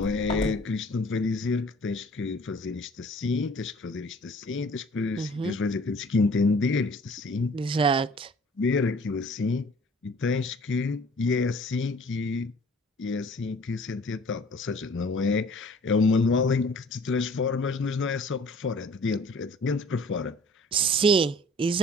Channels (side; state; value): both; normal; correlation 0.51